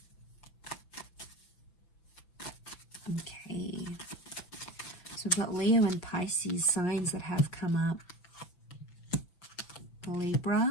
Okay, so we've got Leo and Pisces signs that have come up.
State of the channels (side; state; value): right; late; 6.0 ms